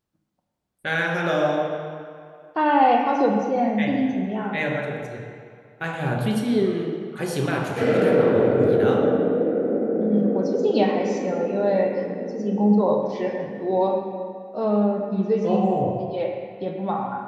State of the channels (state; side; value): identical; both; correlation 1.00